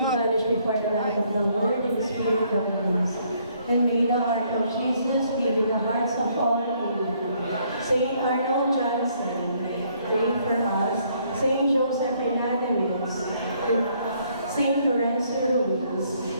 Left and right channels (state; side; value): inverted; both; correlation -0.67